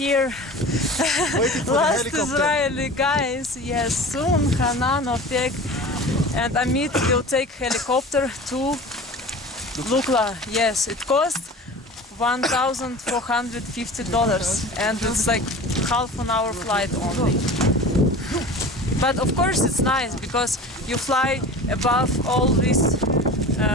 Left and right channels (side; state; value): both; normal; correlation 0.37